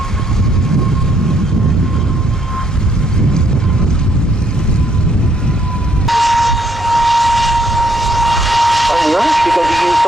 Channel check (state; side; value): normal; both; correlation 0.70